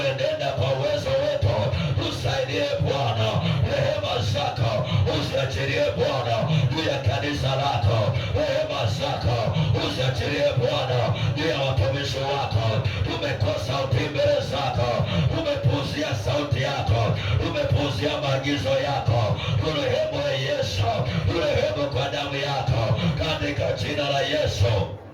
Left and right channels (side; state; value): both; identical; correlation 1.00